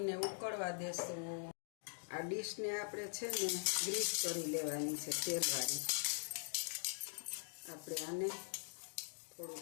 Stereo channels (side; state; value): right; silent; digital silence